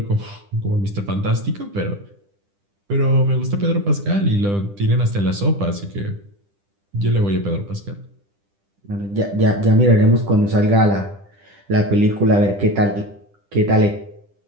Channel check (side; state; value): left; late; 10 ms